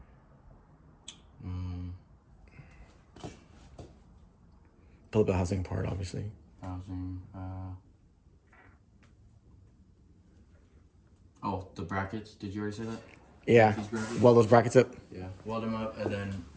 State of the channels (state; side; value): identical; both; correlation 1.00